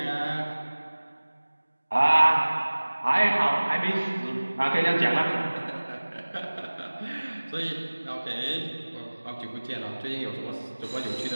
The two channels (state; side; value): inverted; both; correlation -1.00